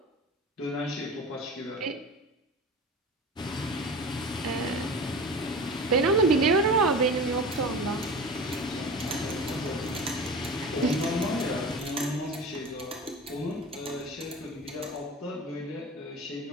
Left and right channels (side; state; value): both; normal; correlation 0.33